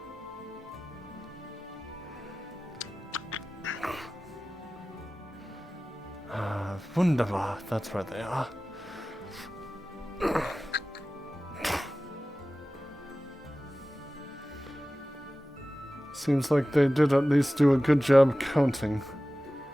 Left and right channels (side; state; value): both; normal; correlation 0.96